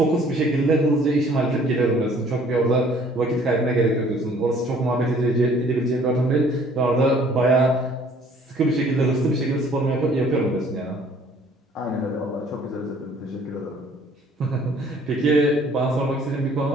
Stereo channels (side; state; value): both; normal; correlation 0.56